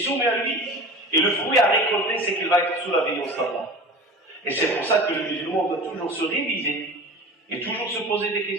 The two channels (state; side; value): normal; both; correlation 0.36